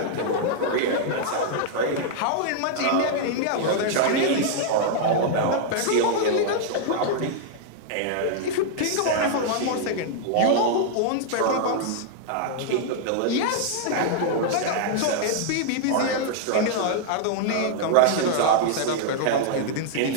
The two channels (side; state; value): both; different; correlation -0.01